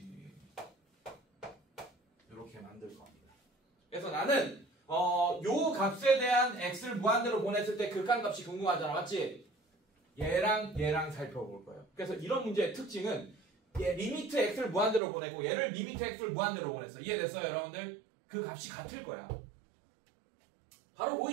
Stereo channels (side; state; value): left; drops out; at 15.0 s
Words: 이렇게 만들 겁니다. 그래서 나는 요 값에 대한 x를 무한대로 보냈을 때 극한값이 궁금하잖아. 맞지? 얘랑 얘랑 살펴볼 거예요. 그래서 이런 문제의 특징은 얘 리미트 x를 무한대로 보내고 얘를 리미트 x를 무한대로 보냈어. 이해됐어요, 여러분들? 그 값이 같을 거야. 바로